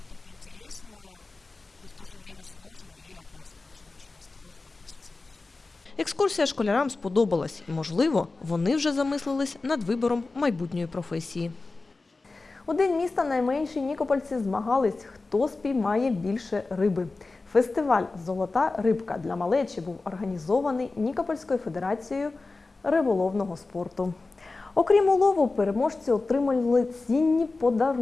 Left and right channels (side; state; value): right; quieter; 3.6 dB